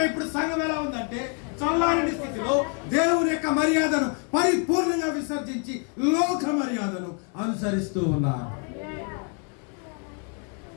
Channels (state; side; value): quieter; right; 39.2 dB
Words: ఇప్పుడు సంఘం ఎలా ఉందంటే చల్లారని స్థితిలో దేవుని యొక్క మర్యాదను పరిపూర్ణంగా విసర్జించి లోక మర్యాదను అనుసరిస్తూ ఉన్నారు.